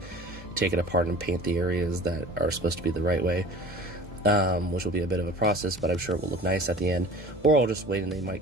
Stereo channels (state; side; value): normal; both; correlation 0.42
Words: take it apart and paint the areas that are supposed to be the right way, which will be a bit of a process, but I'm sure it will look nice at the end. Or I'll just wait and they